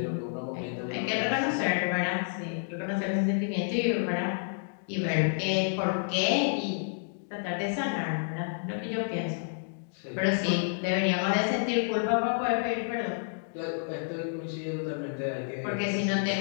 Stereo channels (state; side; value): silent; right; digital silence